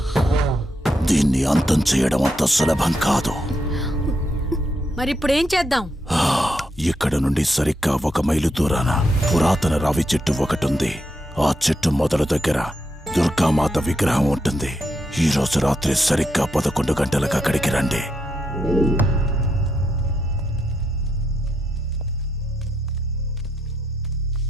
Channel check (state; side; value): normal; both; correlation 0.81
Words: దీన్ని అంతం చేయడం అంత సులభం కాదు. మరిప్పుడేం చేద్దాం? ఇక్కడ నుండి సరిగ్గా 1 మైలు దూరాన పురాతన రావి చెట్టు ఒకటుంది. ఆ చెట్టు మొదలు దగ్గర దుర్గామాత విగ్రహం ఉంటుంది. ఈ రోజు రాత్రి సరిగ్గా 11 గంటలకు అక్కడికి రండి.